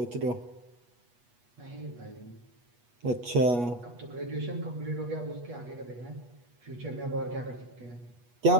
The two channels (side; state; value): left; late; 8.3 ms